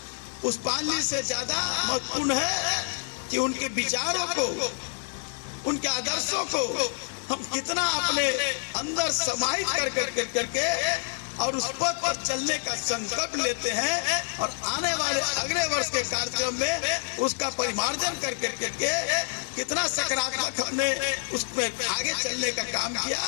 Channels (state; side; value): silent; right; digital silence